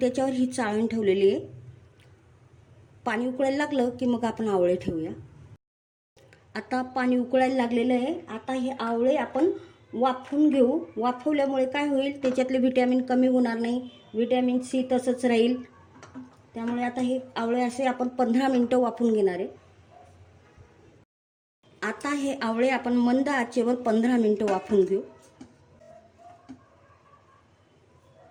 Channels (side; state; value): both; identical; correlation 1.00